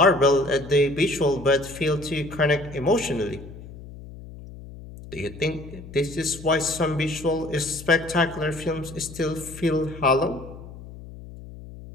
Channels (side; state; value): left; noise; hum, 15 dB below the sound